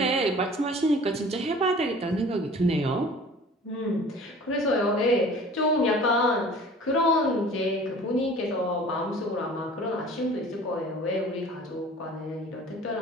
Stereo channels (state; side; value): normal; both; correlation 0.45